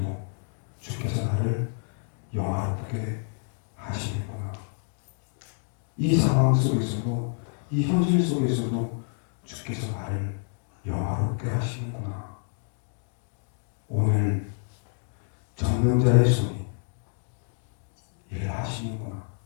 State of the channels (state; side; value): silent; right; 55 dB below the other